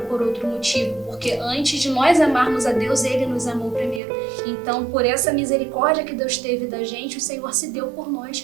por outro motivo, porque antes de nós amarmos a Deus, Ele nos amou primeiro. Então, por essa misericórdia que Deus teve da gente, o Senhor se deu por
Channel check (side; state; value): left; drops out; at 4.0 s